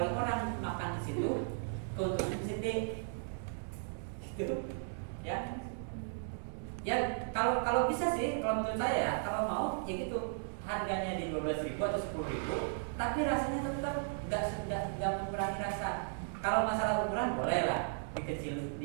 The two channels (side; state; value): left; silent; digital silence